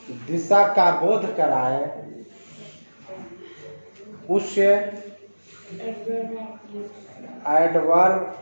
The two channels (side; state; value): both; inverted; correlation -1.00